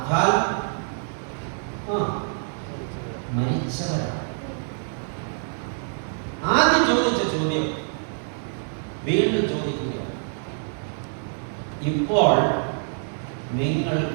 മരിച്ചവരാണ്. ആദ്യം ചോദിച്ച ചോദ്യം വീണ്ടും ചോദിക്കുക, ഇപ്പോൾ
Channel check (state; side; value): silent; left; 61 dB below the other